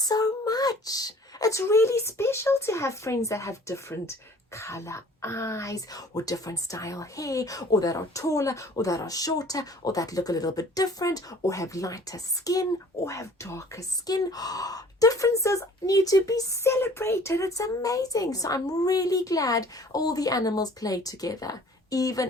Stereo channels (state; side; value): normal; both; correlation 0.51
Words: much. It's really special to have friends that have different color eyes or different style hair, or that are taller or that are shorter, or that look a little bit different, or have lighter skin or have darker skin. Differences need to be celebrated. It's amazing. So I'm really glad all the animals play together,